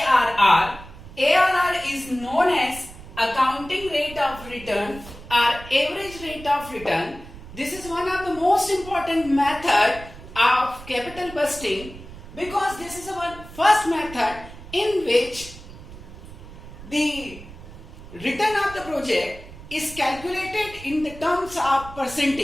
ARR is known as accounting rate of return or average rate of return. This is one of the most important method of capital busting because this is our first method in which the return of the project is calculated in the terms of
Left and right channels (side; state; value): right; noise; rumble, 16 dB below the sound